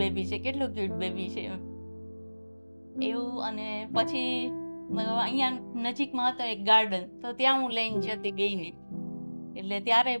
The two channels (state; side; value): inverted; both; correlation -1.00